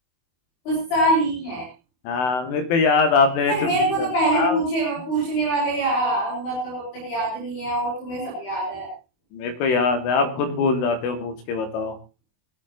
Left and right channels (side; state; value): right; late; 24 ms